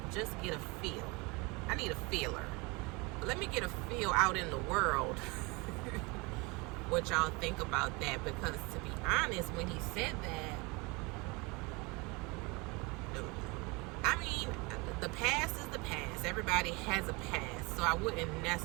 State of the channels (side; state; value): left; quieter; 26.9 dB